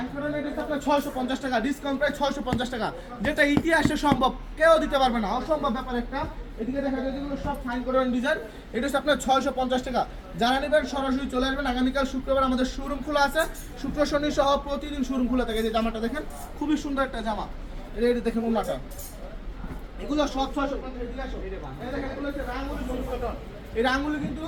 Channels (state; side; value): identical; both; correlation 1.00